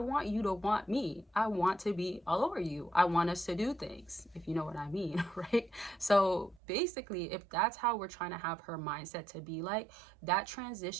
you to want me. I want to be all over you. I want us to do things, if you know what I mean, right? So basically, if that's how we're trying to have her mindset to be like, that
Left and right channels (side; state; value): left; drops out; at 6.6 s